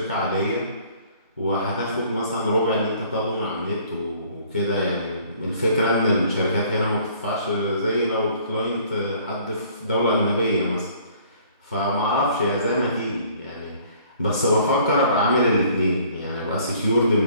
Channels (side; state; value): both; inverted; correlation -0.57